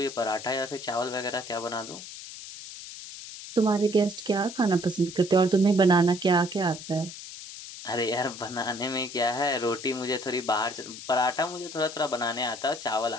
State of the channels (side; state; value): left; noise; hiss, 12 dB below the sound